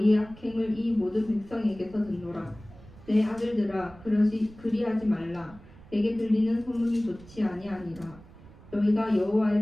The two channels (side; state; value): right; noise; rumble, 21 dB below the sound